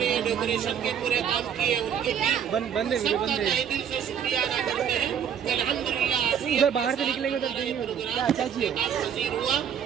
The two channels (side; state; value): left; quieter; 8.4 dB